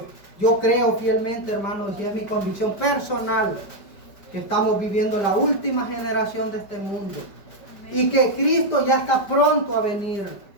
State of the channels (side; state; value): right; late; 5.1 ms